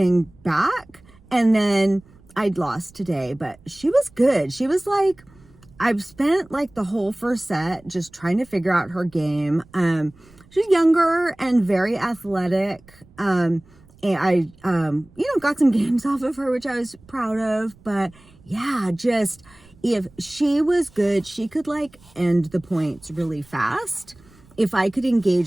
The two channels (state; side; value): noise; right; rumble, 27 dB below the sound